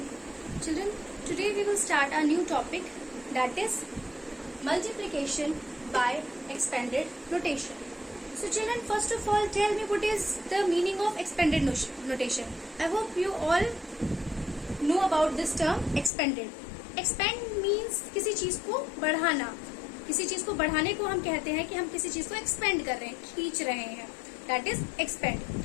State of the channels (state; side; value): drops out; right; at 16.1 s